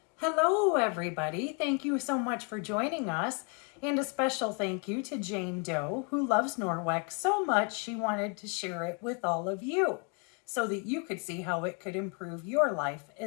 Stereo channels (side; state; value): right; quieter; 35.3 dB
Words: Hello, everybody. Thank you so much for joining us. And a special thank you to Jane Doe, who loves Norwex so much she wanted to share it with all of you so that you could see how it could improve your life